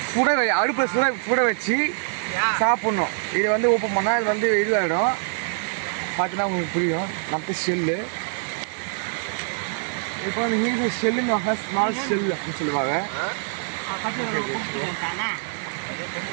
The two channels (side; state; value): left; silent; 62 dB below the other